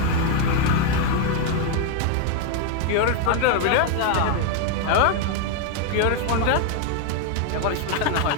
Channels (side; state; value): both; different; correlation 0.01